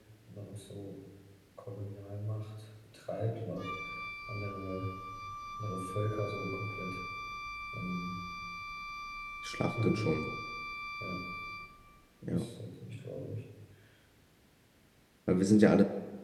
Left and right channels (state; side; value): identical; both; correlation 1.00